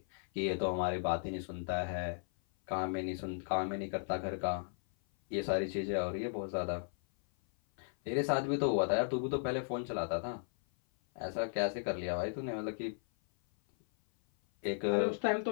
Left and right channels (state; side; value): silent; right; 54 dB below the other